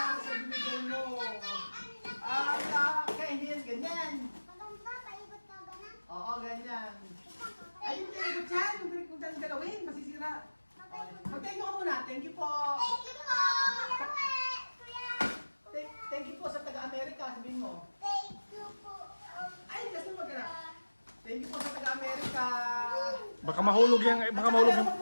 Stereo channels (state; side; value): inverted; both; correlation -1.00